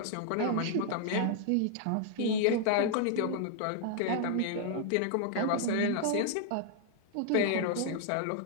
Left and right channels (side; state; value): both; different; correlation 0.00